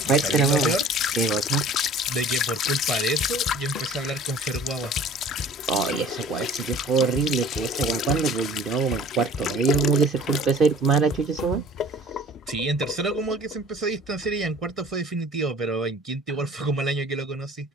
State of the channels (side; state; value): both; normal; correlation 0.48